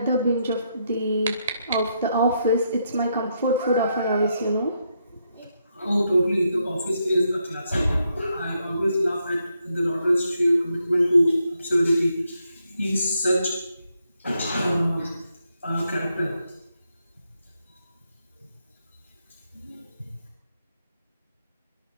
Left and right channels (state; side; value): inverted; both; correlation -0.79